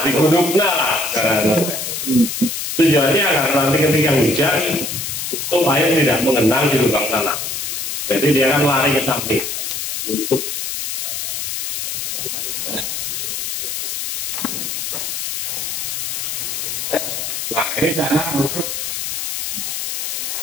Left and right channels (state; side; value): noise; left; hiss, 3 dB below the sound